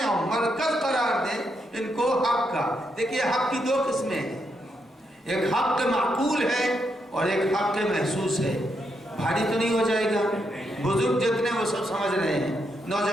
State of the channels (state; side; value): normal; both; correlation 0.80